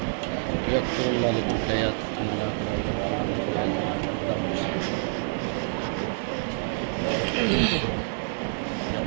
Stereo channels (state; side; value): silent; left; 60 dB below the other